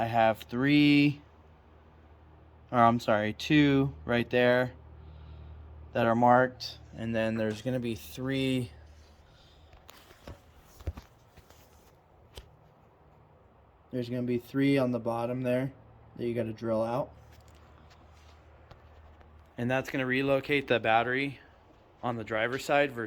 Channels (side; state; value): both; identical; correlation 1.00